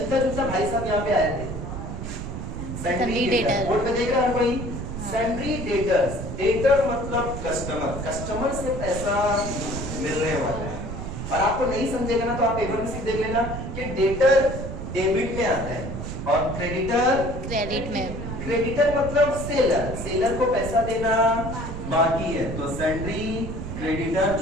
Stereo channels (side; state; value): right; noise; rumble, 6 dB below the sound